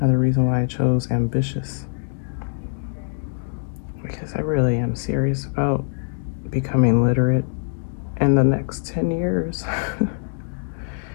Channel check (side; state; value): right; silent; digital silence